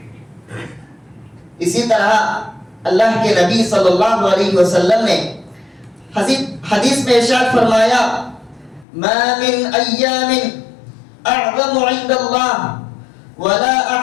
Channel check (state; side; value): drops out; right; at 8.8 s